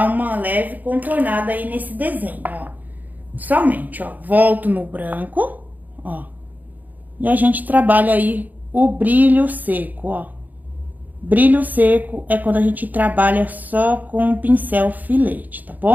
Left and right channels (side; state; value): left; late; 0.082 ms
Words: uma leve contornada aí nesse desenho, ó. Somente, ó, volto no branco, ó. E a gente trabalha aí o brilho seco, ó. Brilho seco é quando a gente trabalha só com o pincel filete, tá